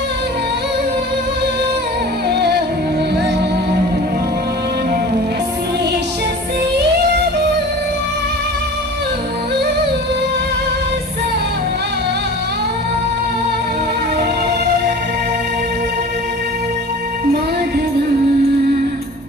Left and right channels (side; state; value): both; normal; correlation 0.40